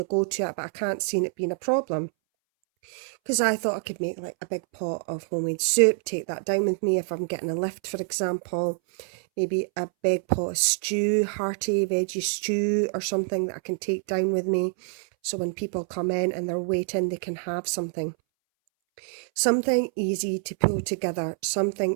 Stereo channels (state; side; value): silent; left; 61 dB below the other